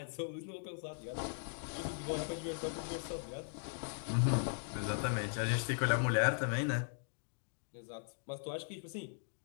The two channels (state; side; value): silent; right; digital silence